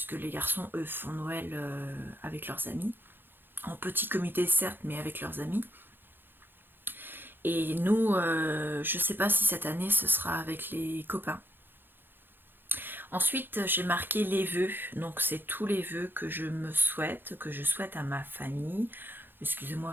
les garçons, eux, font Noël avec leurs amis. En petit comité, certes, mais avec leurs amis. Et nous, je ne sais pas si cette année, ce sera avec les copains. Ensuite, j'ai marqué les vœux. Donc, c'est tous les vœux que je me souhaite, que je souhaite à ma famille. Excusez-moi,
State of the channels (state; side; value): late; left; 0.098 ms